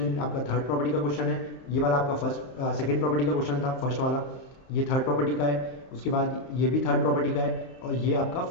आपका थर्ड प्रॉपर्टी का क्वेश्चन है, ये वाला आपका सेकंड प्रॉपर्टी का क्वेश्चन था फर्स्ट वाला, ये थर्ड प्रॉपर्टी का है, उसके बाद ये भी थर्ड प्रॉपर्टी का है, और ये आपका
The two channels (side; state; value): right; late; 31 ms